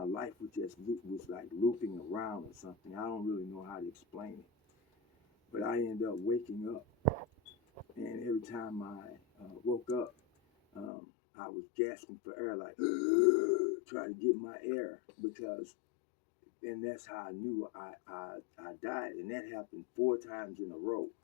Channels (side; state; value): right; drops out; at 10.9 s